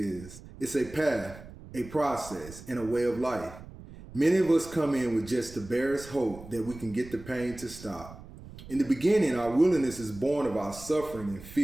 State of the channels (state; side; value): noise; right; rumble, 16 dB below the sound